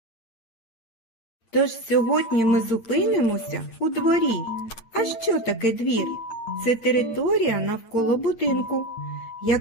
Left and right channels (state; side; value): late; right; 8.8 ms